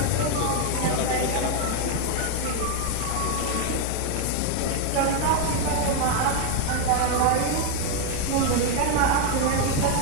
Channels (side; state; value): both; different; correlation 0.01